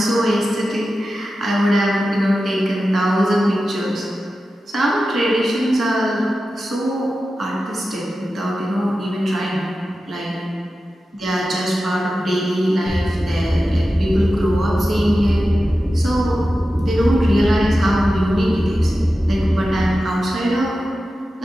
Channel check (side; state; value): both; normal; correlation 0.93